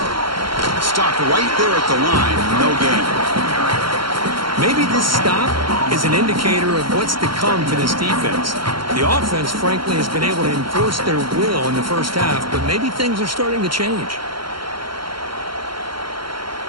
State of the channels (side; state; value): left; late; 0.73 ms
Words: Stopped right there at the line, no gain. Maybe this stop is an indicator of what's to come for this defense. The offense, frankly, has been able to enforce their will in the first half, but maybe things are starting to change.